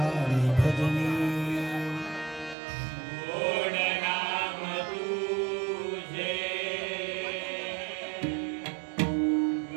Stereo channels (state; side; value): drops out; left; at 2.6 s